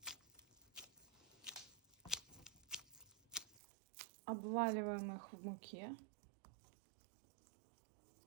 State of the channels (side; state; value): left; drops out; at 3.6 s